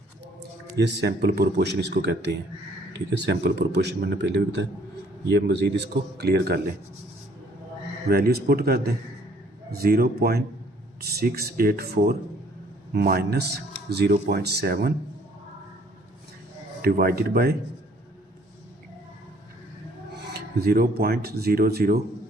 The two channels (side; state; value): both; normal; correlation 0.60